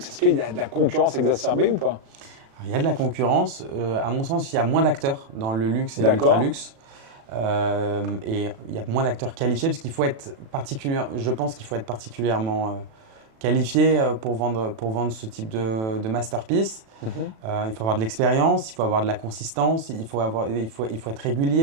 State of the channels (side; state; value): left; late; 36 ms